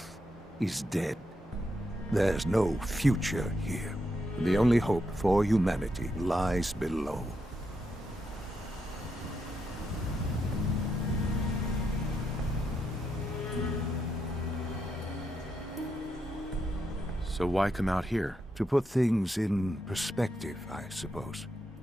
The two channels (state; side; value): normal; both; correlation 0.82